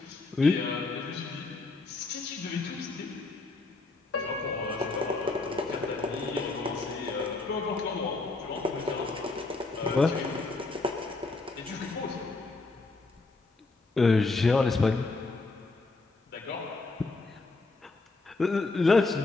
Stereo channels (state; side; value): quieter; right; 3.5 dB